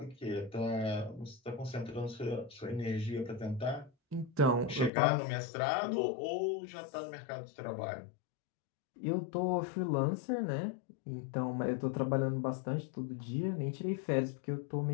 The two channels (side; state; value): right; drops out; at 4.9 s